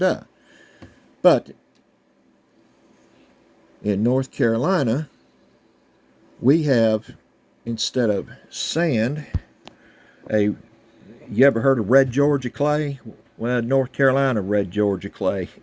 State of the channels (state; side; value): identical; both; correlation 1.00